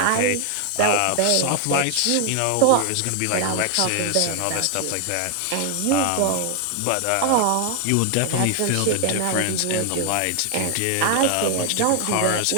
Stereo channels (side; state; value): both; different; correlation 0.00